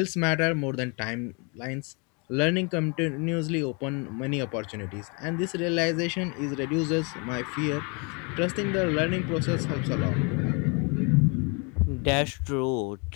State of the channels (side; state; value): right; quieter; 33.4 dB